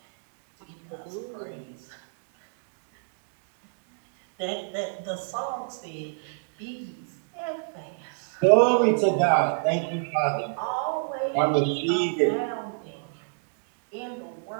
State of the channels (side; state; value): left; silent; digital silence